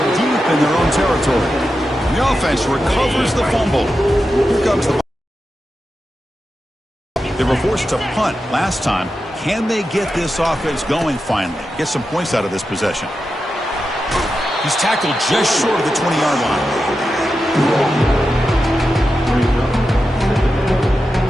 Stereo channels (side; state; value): both; normal; correlation 0.90